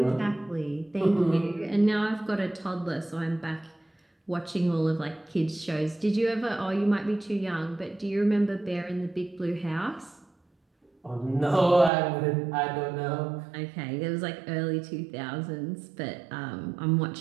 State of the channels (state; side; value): drops out; left; at 11.9 s